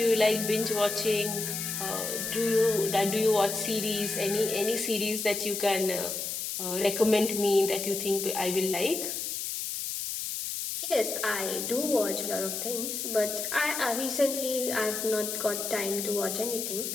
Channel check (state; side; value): noise; left; hiss, 4 dB below the sound